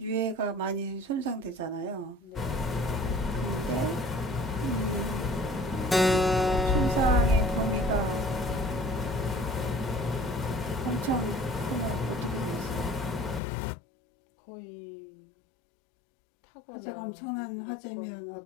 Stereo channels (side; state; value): right; drops out; at 13.4 s